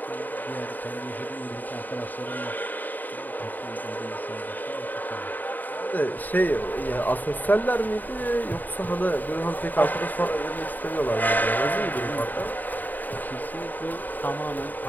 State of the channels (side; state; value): right; late; 0.087 ms